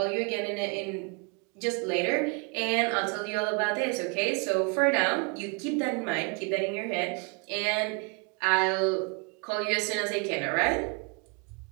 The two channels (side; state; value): left; quieter; 32.8 dB